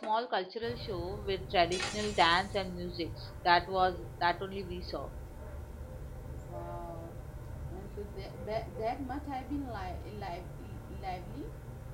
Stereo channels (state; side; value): identical; both; correlation 1.00